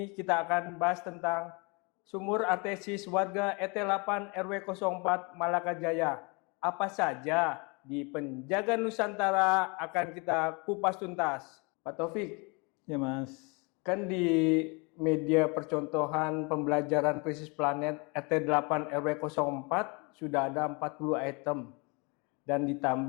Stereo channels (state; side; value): quieter; right; 30.5 dB